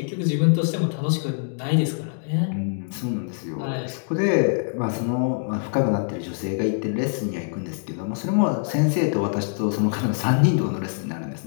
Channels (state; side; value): silent; right; digital silence